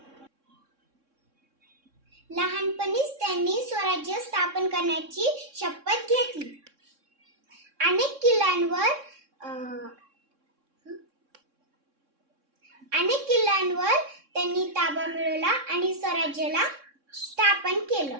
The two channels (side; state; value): left; late; 3.6 ms